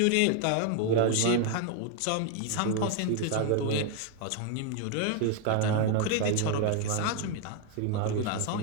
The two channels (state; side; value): different; both; correlation 0.01